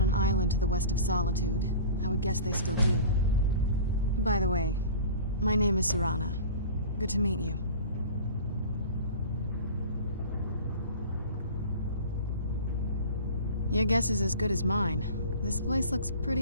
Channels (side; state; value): both; inverted; correlation -0.39